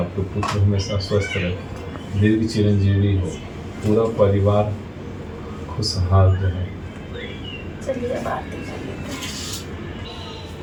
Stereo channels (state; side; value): identical; both; correlation 1.00